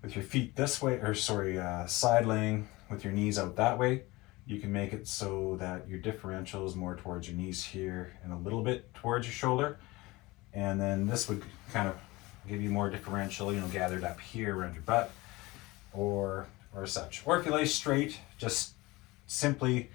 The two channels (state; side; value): quieter; right; 21.6 dB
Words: with your feet this way, side laying with your knees out that way, you can make it so that your differential is more towards your knees here and a little bit towards your shoulder. And then this would kind of give you more differential, gathered up here around your butt or such. Or if you lay straight, just simply